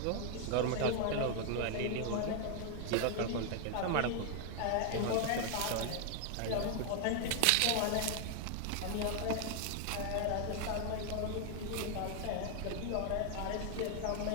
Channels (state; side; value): different; both; correlation 0.00